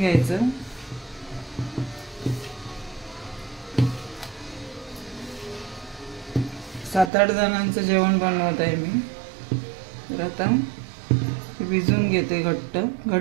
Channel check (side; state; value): left; drops out; at 7.1 s